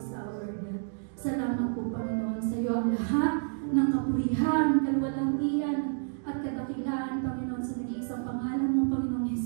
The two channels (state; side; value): silent; left; digital silence